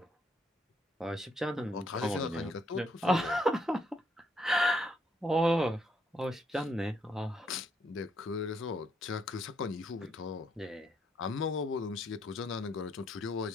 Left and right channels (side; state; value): both; normal; correlation 0.73